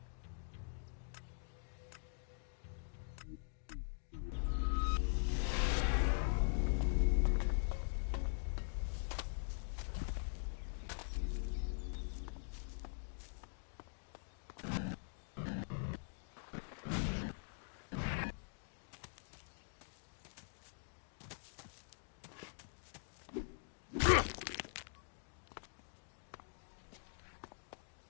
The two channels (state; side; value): silent; right; digital silence